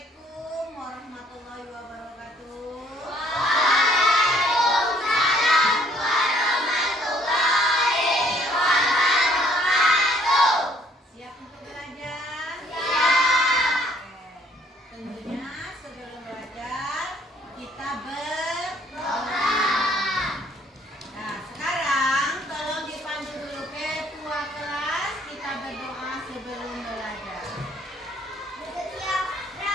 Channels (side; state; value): both; normal; correlation 0.62